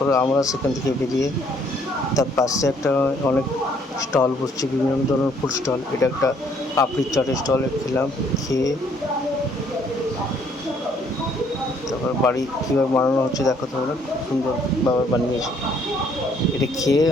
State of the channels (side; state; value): both; normal; correlation 0.65